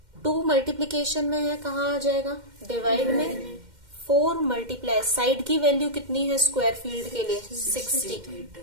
2 मल्टीप्लीकेशन में है, कहाँ आ जाएगा, डिवाइड में. 4 मल्टीप्लाई साइड की वैल्यू कितनी है स्क्वायर फील्ड के लिए, 60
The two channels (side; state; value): left; late; 2.1 ms